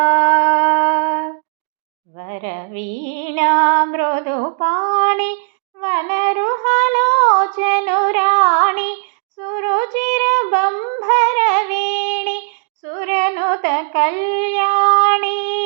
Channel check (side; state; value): left; silent; digital silence